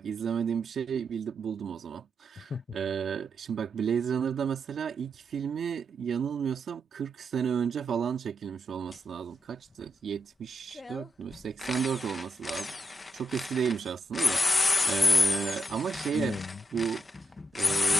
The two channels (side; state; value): both; normal; correlation 0.85